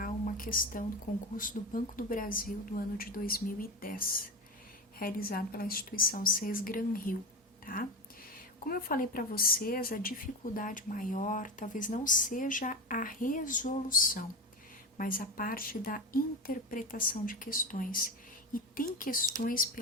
uma questão do concurso do Banco do Brasil do ano de 2010, realizado pela instituição CES Gran Rio, tá? Como eu falei para vocês, a dificuldade maior talvez não seja a resolução, mas a parte da interpretação de questões. E tem questões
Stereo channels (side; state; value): both; normal; correlation 0.21